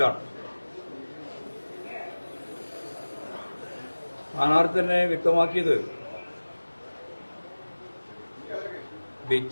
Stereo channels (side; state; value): both; inverted; correlation -1.00